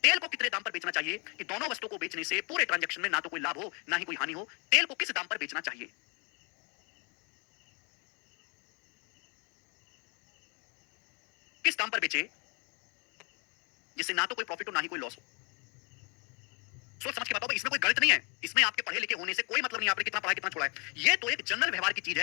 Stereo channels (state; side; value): quieter; right; 32.6 dB